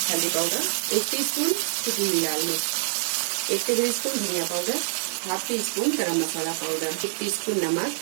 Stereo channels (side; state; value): left; silent; 60 dB below the other